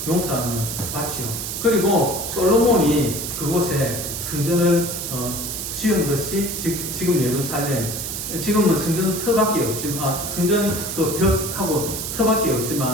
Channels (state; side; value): noise; right; hiss, 5 dB below the sound